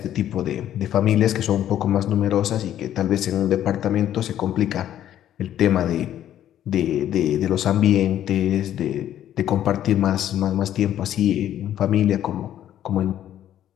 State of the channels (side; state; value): right; quieter; 11.4 dB